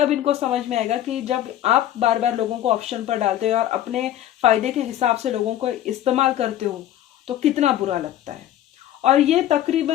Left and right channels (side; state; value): right; quieter; 12.2 dB